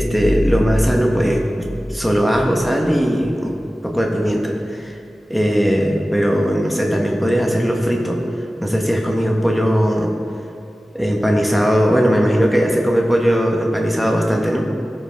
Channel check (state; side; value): normal; both; correlation 0.95